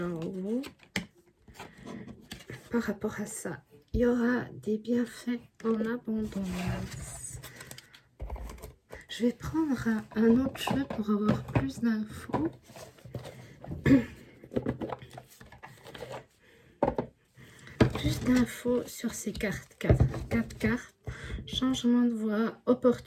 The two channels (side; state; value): both; identical; correlation 1.00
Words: en vous. Par rapport à ça, il y aura des bienfaits en abondance. Je vais prendre un autre jeu pour avoir plus d'infos. Plus d'infos sur ces cartes. 4 cartes. Changement de voie,